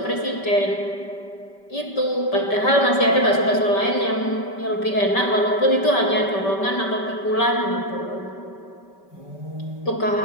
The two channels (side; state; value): right; late; 5.2 ms